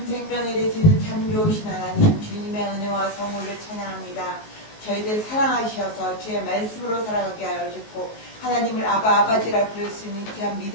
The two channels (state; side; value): late; right; 19 ms